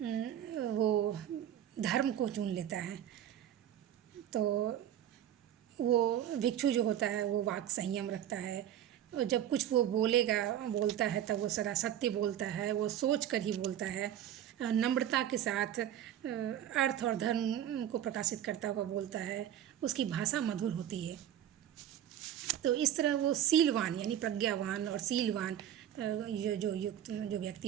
वो धर्म को चुन लेता है। तो वो भिक्षु जो होता है वो वाक संयम रखता है, और जब कुछ वो बोलता है तब वो सदा सत्य बोलता है, वो सोच कर ही बोलता है, नम्रता के साथ अर्थ और धर्म को प्रकाशित करता हुआ बोलता है, उसकी भाषा मधुर होती है। तो इस तरह वो शीलवान यानी प्रज्ञावान और शीलवान जो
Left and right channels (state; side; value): quieter; left; 10.9 dB